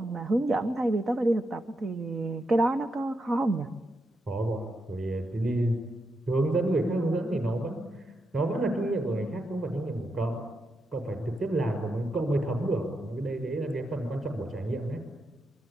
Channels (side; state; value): both; normal; correlation 0.84